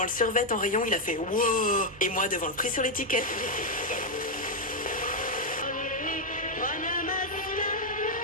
le survêt en rayon, il a fait wow. Et moi devant le prix sur l'étiquette.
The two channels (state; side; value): normal; both; correlation 0.01